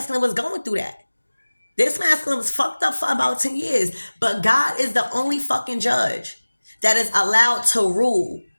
was going through that? This masculine was fucked up for about 10 years. But God is the only fucking judge that is allowed to rule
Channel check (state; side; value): inverted; both; correlation -1.00